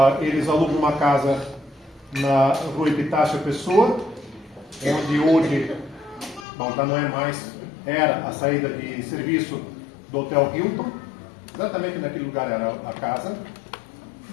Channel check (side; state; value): right; drops out; at 6.5 s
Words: eles alugam uma casa na rua Epitácio Pessoa, onde hoje, já não é mais, era a saída de serviço do Hotel Hilton. Exatamente naquele lugar era a casa.